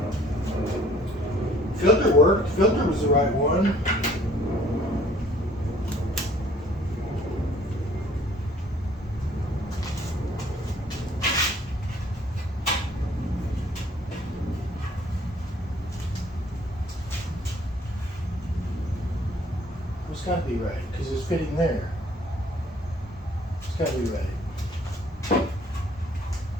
Filter worked. Filter was the right one. It's got to be right because it's fitting there. It's got to be right.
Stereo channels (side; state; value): both; normal; correlation 0.58